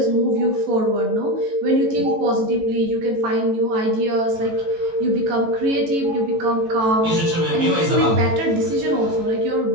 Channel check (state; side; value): late; left; 18 ms